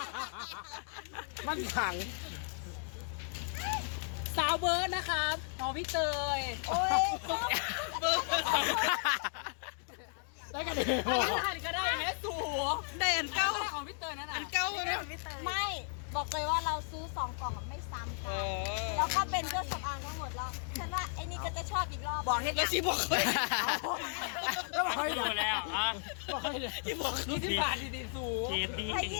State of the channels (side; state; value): right; silent; 55 dB below the other